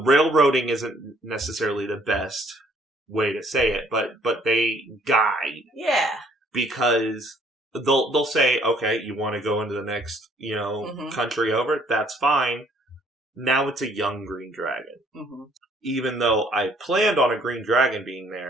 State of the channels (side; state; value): both; normal; correlation 0.62